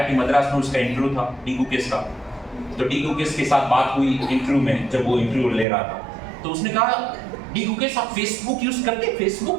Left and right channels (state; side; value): drops out; left; at 5.7 s